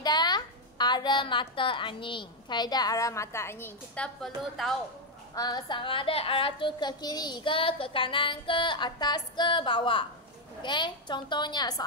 arah mata angin. Kaedah arah mata angin. Kita perlu tahu sama ada arah tu ke kiri ke kanan ke atas ke bawah. Okey, contohnya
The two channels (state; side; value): normal; both; correlation 0.03